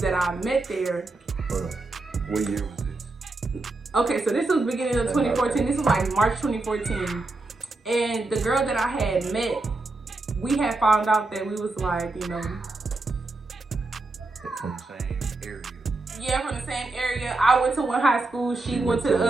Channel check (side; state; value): left; quieter; 3.2 dB